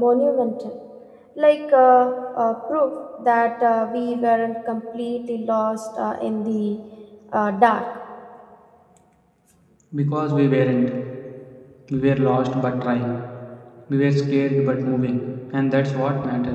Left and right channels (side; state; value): both; identical; correlation 1.00